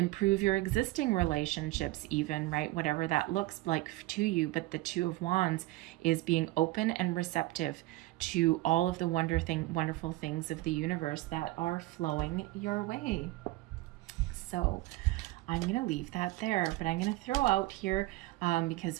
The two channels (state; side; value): quieter; left; 18.7 dB